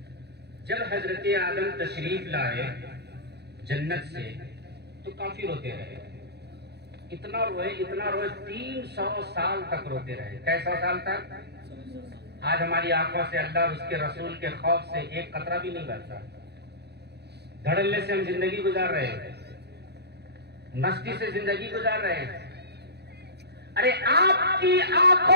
جب حضرت آدم تشریف لائے جنت سے تو کافی روتے رہے، اتنا روئے 300 سال تک روتے رہے۔ کیسا سال تک؟ آج ہماری آنکھوں سے اللہ اور اس کے رسول کے خوف سے ایک قطرہ بھی نہیں بہتا، دھڑلے سے ہم زندگی گزار رہے ہیں، مستی سے زندگی گزار رہے ہیں۔ ارے آپ کی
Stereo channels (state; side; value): late; left; 0.48 ms